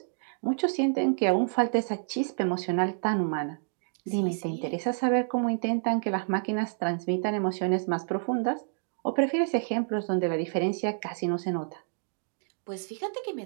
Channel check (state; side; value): silent; left; digital silence